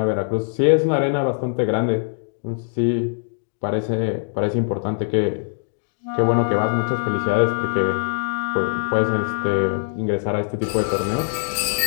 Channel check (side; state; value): right; silent; digital silence